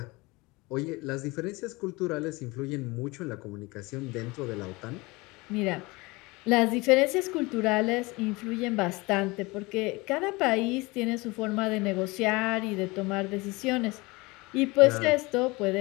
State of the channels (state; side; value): quieter; right; 23.9 dB